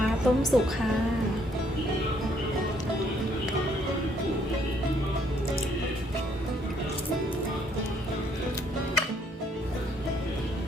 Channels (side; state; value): both; normal; correlation 0.67